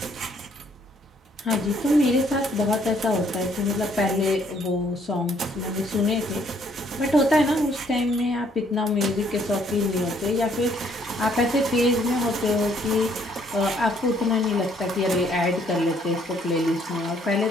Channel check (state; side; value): normal; both; correlation 0.66